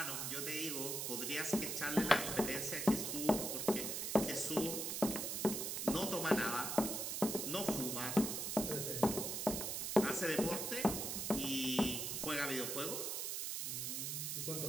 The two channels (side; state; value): right; noise; hiss, 2 dB below the sound